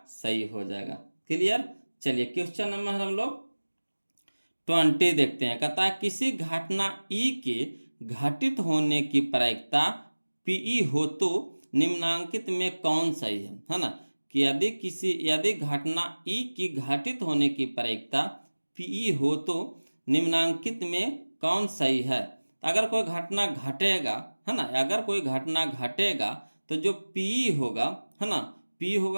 सही हो जाएगा। क्लियर। चलिए क्वेश्चन नंबर हम लोग 20 देखते हैं। कहता है किसी घटना ई के घटित होने की प्रायिकता पीई हो तो निम्नांकित में कौन सही है ना। कि यदि घटना ई की घटित होने की प्रायिकता पीई हो तो निम्नांकित में कौन सही है। अगर कोई घटना घटेगा है ना, अगर कोई घटना घटेगा तो जो पीई होगा है ना, पी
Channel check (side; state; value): both; inverted; correlation -1.00